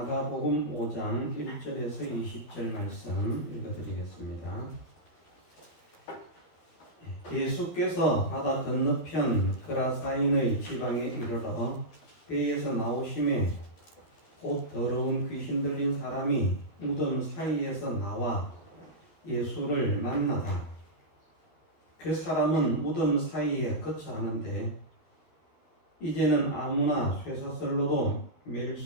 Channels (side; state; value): right; late; 12 ms